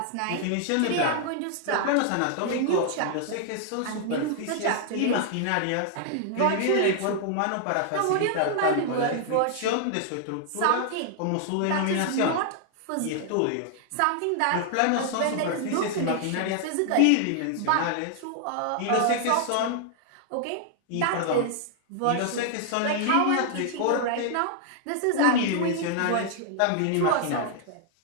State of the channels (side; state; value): both; different; correlation 0.00